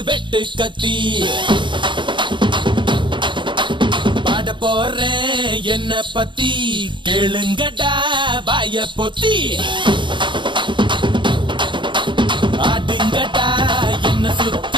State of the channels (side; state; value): left; late; 0.23 ms